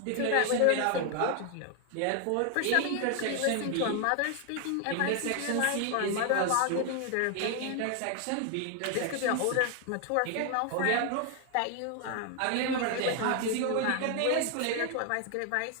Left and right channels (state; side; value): different; both; correlation 0.00